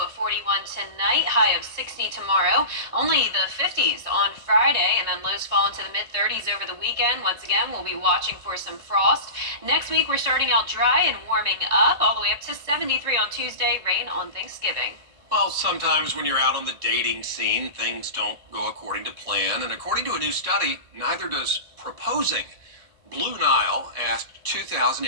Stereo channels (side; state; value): left; late; 2.2 ms